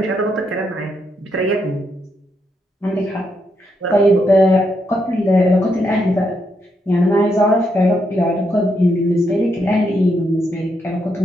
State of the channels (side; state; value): both; normal; correlation 0.79